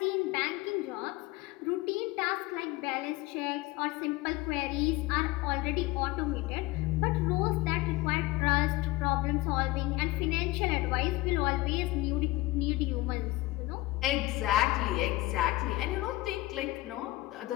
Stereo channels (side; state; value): right; quieter; 19.6 dB